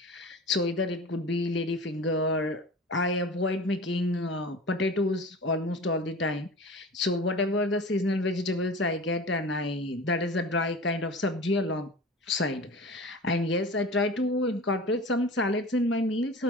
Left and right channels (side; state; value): both; normal; correlation 0.36